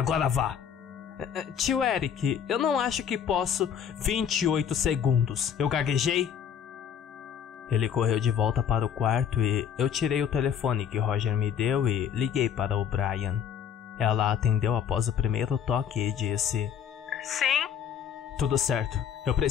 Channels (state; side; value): quieter; right; 8.3 dB